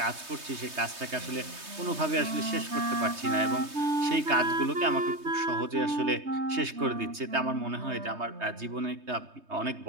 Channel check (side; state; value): left; late; 3.2 ms